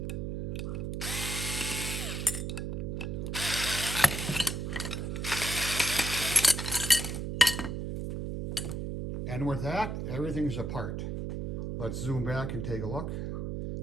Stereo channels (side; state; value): right; noise; hum, 3 dB below the sound